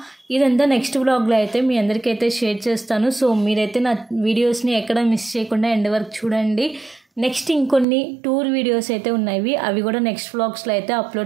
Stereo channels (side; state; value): left; drops out; at 7.9 s